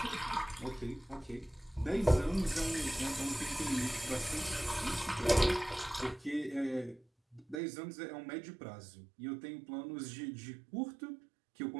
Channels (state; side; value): drops out; left; at 7.6 s